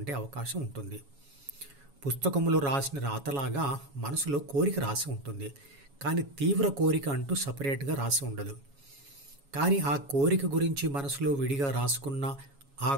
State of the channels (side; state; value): left; late; 7.2 ms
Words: అవకాశం ఉంటుంది. పుస్తకంలో రాసిన రాతలాగా మనసులో కోరిక రాసి ఉంటుంది, కానీ తీవ్ర కోరిక అంటూ సపరేట్గా రాసి ఉండదు. కానీ ఆ కోరిక గురించి మనసులో విడిగా రాసుకున్న ఆ